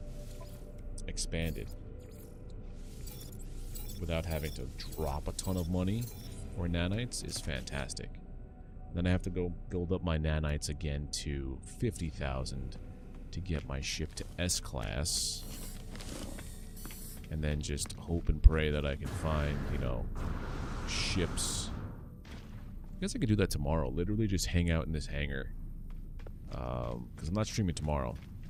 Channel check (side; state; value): both; identical; correlation 1.00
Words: expanded without having to drop a ton of money for nanites is fantastic. Then I have to go build up my nanites again to 50,000 to get my ship to S-class. And then just hope and pray that I can find, you know, ships. I guess I could do that tomorrow. Literally just hang out in this hangar. Because I'm not streaming tomorrow.